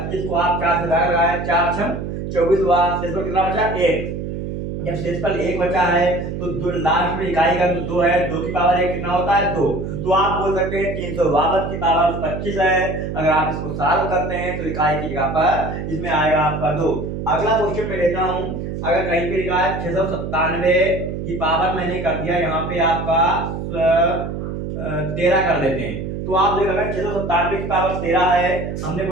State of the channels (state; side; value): noise; right; hum, 5 dB below the sound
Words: को आप 4 से भाग लगाए, 4 6 24 हुआ, शेष पर कितना बचा 1। जब शेषफल 1 बचा है तो लास्ट में इकाई का 2 है, 2 की पावर 1 कितना होता है 2। तो आप बोल सकते हैं 352 की पावर 25 है, अगर आप इसको सॉल्व करते हैं तो इकाई की जगह पर इसमें आएगा आपका 2। अगला क्वेश्चन मैं लेता हूं, अगर कहीं पे लिखा है 697 की पावर मैंने कर दिया यहाँ पे आपका 13 कर देते हैं। तो आप देखो अगर 697 की पावर 13 है, हमने